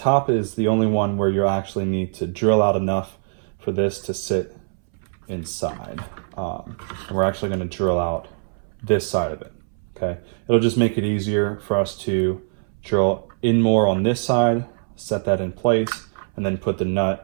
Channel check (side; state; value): left; silent; 64 dB below the other